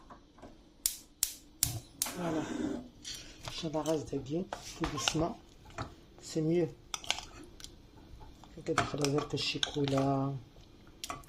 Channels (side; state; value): both; identical; correlation 1.00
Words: Voilà. Je la rase daguer, tout doucement. C'est mieux. كده خلطت الشوكولا.